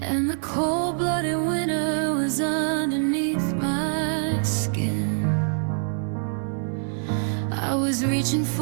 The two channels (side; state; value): left; silent; 58 dB below the other